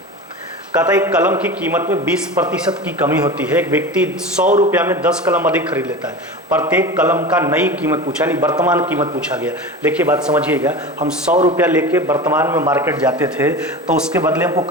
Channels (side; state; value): both; normal; correlation 0.30